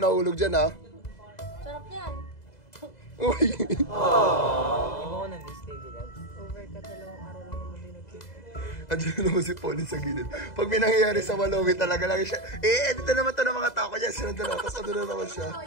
dyan, ha? Sarap yan. Uy. Di mo ko na-miss, baby love. Over ka, 2 araw lang naman din nag-keep. Andiyan naman si Pauline sa gilid. Pag may nangyayari sa Walowi, talaga lang siya. Dito naman to ng mga tao niya. Sunod na lang. Tapos ano na naman siya.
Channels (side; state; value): right; late; 2.0 ms